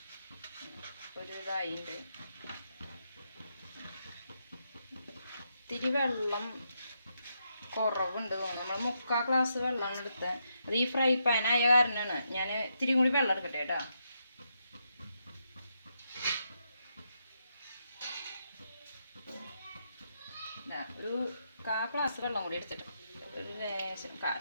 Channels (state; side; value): inverted; both; correlation -0.81